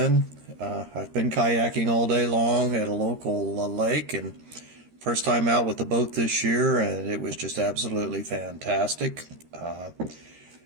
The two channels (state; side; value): late; left; 13 ms